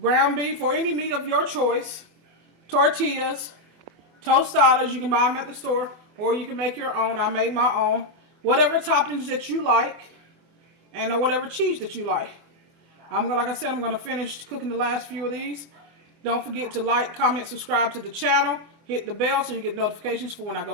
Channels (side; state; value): left; late; 24 ms